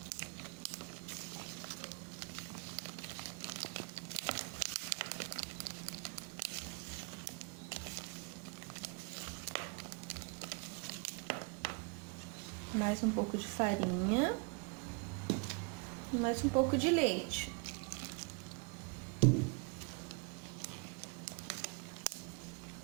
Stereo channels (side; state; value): left; quieter; 33.7 dB